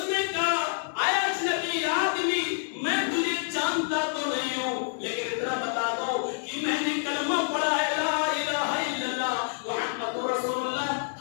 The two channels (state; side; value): silent; right; digital silence